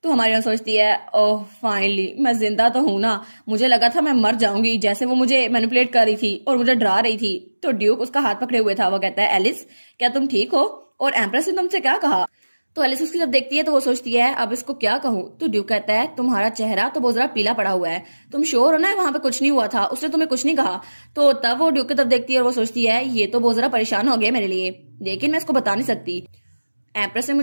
तो हमारी हीरोइन सोचती है ओह फाइनली मैं जिंदा तो हूं ना, मुझे लगा था मैं मर जाऊंगी जैसे वो मुझे मैनिपुलेट कर रही थी और मुझे डरा रही थी। तो ड्यूक उसका हाथ पकड़े हुए था। वो कहता है एलिस क्या तुम ठीक हो? और एम्प्रेस ने तुमसे क्या कहा? तो एलिस उसकी जब देखती है तो वो सोचती है अब इसको क्या कहूँ। तो ड्यूक कहता है तुम्हारा चेहरा तो बहुत ज्यादा पीला पड़ा हुआ है, तुम श्योर हो ना वहां पे कुछ नहीं हुआ था, उसने तुम्हें कुछ नहीं कहा? तो तब वो ड्यूक की तरफ देखती है और वो सोचती है ये तो बहुत ज्यादा परेशान हो गया मेरे लिए, लेकिन मैं इसको बता नहीं सकती। एम्प्रेस ने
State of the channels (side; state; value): both; inverted; correlation -1.00